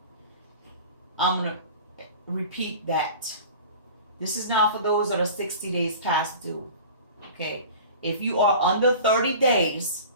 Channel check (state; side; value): inverted; both; correlation -0.39